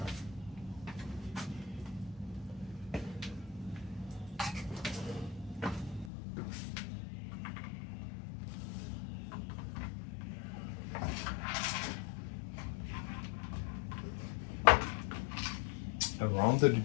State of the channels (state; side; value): drops out; right; at 6.1 s